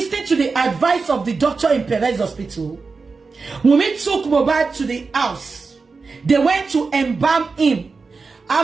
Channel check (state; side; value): quieter; left; 4.4 dB